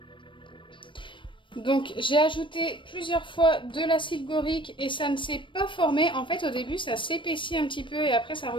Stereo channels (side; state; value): right; late; 0.24 ms